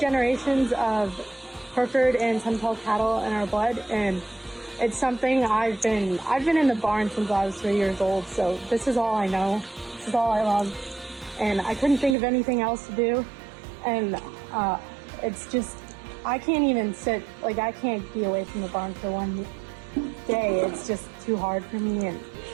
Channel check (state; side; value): drops out; left; at 12.2 s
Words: of Hereford and Sunpelt cattle in our blood, and it's something I've been in the barn since I was 3 years old. So this is all I know. This is all I love, and I couldn't think of anything else to do. And it's just, I can't even sit, like I can't be away from the barn for one day. It's just too hard for me. And